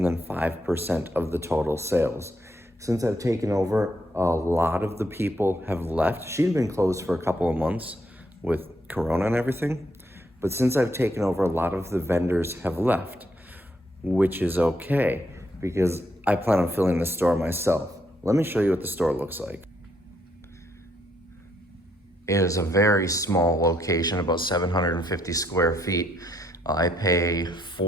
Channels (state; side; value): normal; both; correlation 0.74